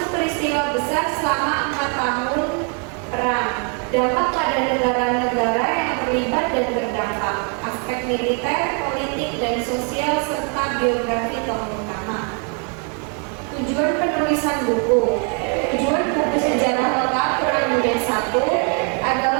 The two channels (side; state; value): left; quieter; 38.8 dB